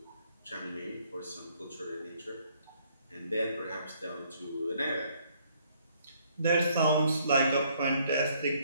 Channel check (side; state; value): both; inverted; correlation -0.66